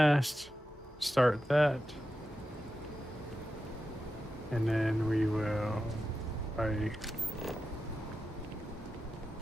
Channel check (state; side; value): normal; both; correlation 0.91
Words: start that, and then we will